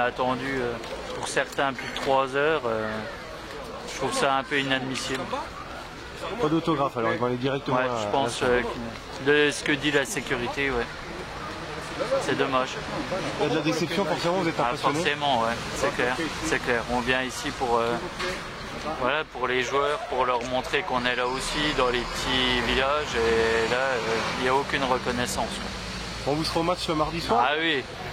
attendu pour certains plus de 3 heures. Je trouve ça un peu inadmissible. Pas d'autographe alors, ils vont aller directement Ouais, je pense de ce que dit la sécurité, ouais. C'est dommage. Il y a de la déception, forcément, vous êtes impressionné? Forcément, ouais, c'est clair, c'est clair. On vient ici pour, voilà, pour les joueurs, pour leur montrer qu'on est là aussi dans les petits villages et là, il n'y a aucune reconnaissance. On vous sera au match le mardi soir? Ah oui,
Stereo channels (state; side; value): identical; both; correlation 1.00